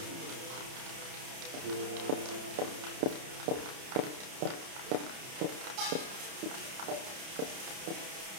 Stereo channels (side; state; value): left; late; 30 ms